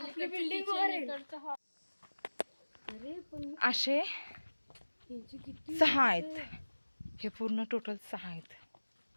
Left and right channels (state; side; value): inverted; both; correlation -1.00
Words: बिल्डिंग हॉल. अरे पण असे यांची किती 6 आहेत. हे पूर्ण टोटल 6 आहेत.